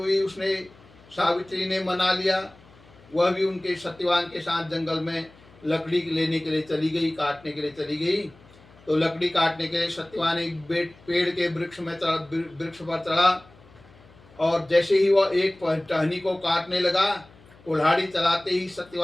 उसने सावित्री ने मना लिया। वह भी उनके सत्यवान के साथ जंगल में लकड़ी लेने के लिए चली गई, काटने के लिए चली गई। तो लकड़ी काटने के लिए सत्यवान एक पेड़ के वृक्ष पर चढ़ा, और जैसे ही वह एक टहनी को काटने लगा, कुल्हाड़ी चलाते ही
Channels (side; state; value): left; noise; hum, 25 dB below the sound